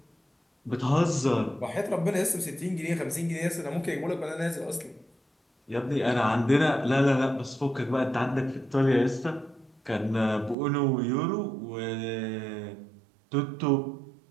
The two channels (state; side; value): drops out; left; at 10.6 s